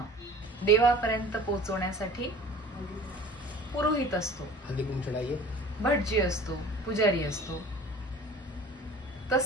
देवापर्यंत पोहोचवण्यासाठी पुरोहित असतो, भटजी असतो, पुजारी असतो.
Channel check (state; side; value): normal; both; correlation 0.44